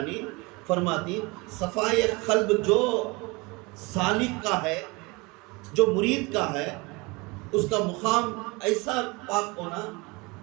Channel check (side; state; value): left; quieter; 26.0 dB